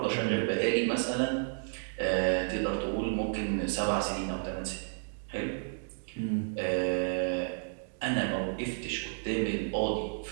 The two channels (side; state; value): left; silent; digital silence